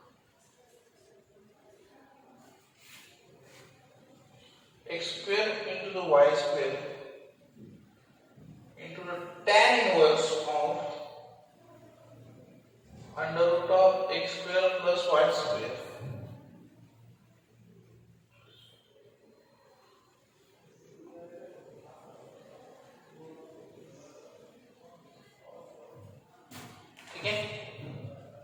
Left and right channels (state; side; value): identical; both; correlation 1.00